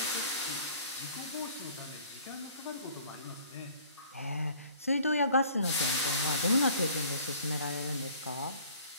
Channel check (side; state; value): both; inverted; correlation -0.53